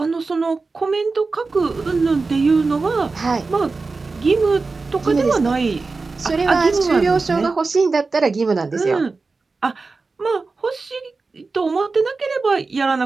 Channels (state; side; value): quieter; left; 4.0 dB